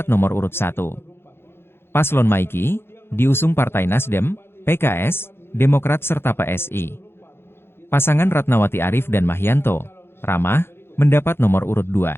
nomor urut 1. Paslon Maiki, diusung Partai Nasdem, PKS, Demokrat serta PSI. Pasangan Ratnawati Arif dan Mahyanto, Ramah, mendapat nomor urut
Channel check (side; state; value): right; late; 0.11 ms